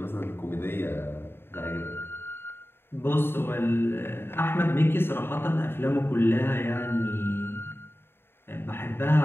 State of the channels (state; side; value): late; right; 0.11 ms